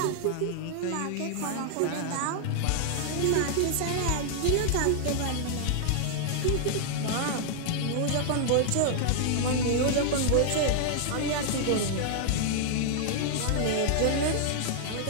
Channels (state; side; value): different; both; correlation -0.01